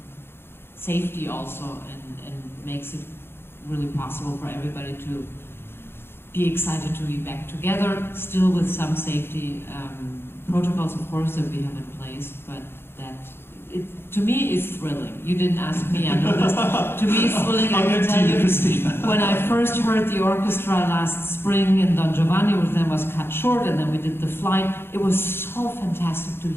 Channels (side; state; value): right; late; 0.11 ms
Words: safety also, and makes it really possible for everybody to be excited to be back together, still with some safety protocols, of course, that we have in place, but that, to me, is thrilling. You didn't ask me, I know this. To me, it's thrilling. I can tell you, when I first heard the orchestra last spring in Don Giovanni with them was cut short, and then we did the flight, it was so fantastic to